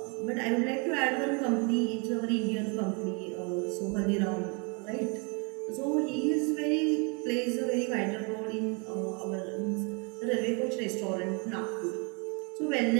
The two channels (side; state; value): left; quieter; 33.3 dB